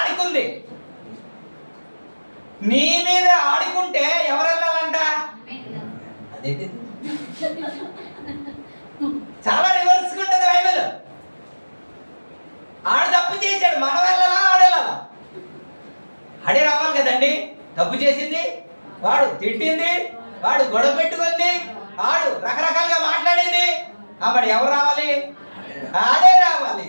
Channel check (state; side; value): inverted; both; correlation -1.00